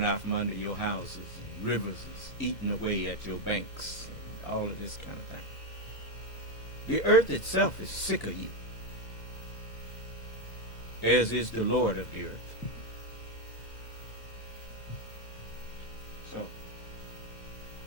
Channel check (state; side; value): late; right; 2.1 ms